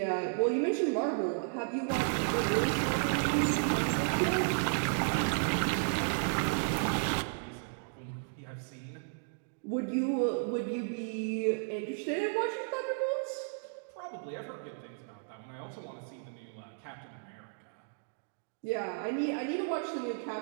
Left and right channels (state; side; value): silent; left; digital silence